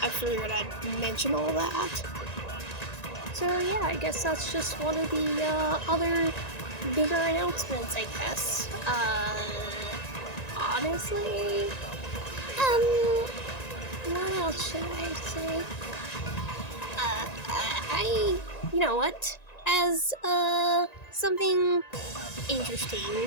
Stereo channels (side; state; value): right; late; 1.9 ms